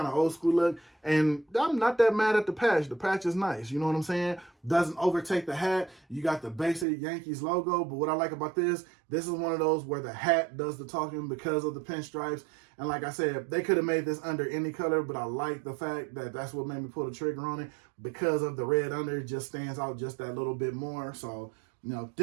of old school look. And I'm not that mad at the patch. The patch is nice, you know what I'm saying? Doesn't overtake the hat. You got the basic Yankees logo, but what I like about this is one of those where the hat does the talking because of the pinstripes. And like I said, they could have made this under any color, but I like the fact that that's what made me pull the trigger on it. Because of the red under, it just stands out just that little bit more. So,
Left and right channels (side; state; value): left; drops out; at 6.9 s